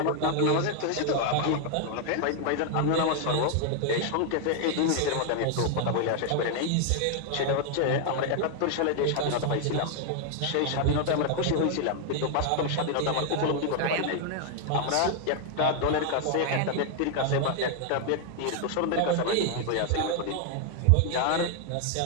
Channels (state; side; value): different; both; correlation 0.00